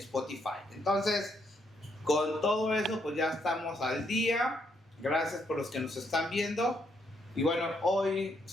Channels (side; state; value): both; normal; correlation 0.75